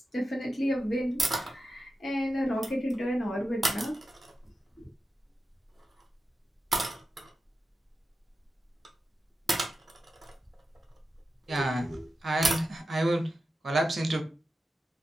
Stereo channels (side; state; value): both; normal; correlation 0.91